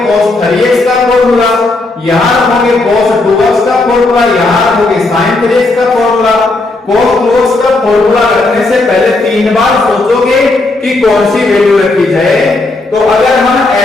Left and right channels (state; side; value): quieter; right; 3.1 dB